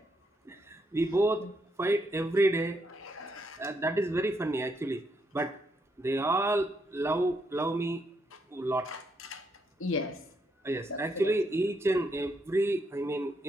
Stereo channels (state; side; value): normal; both; correlation 0.77